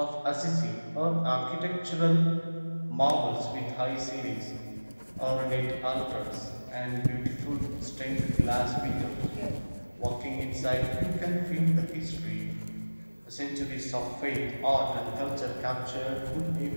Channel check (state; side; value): inverted; both; correlation -1.00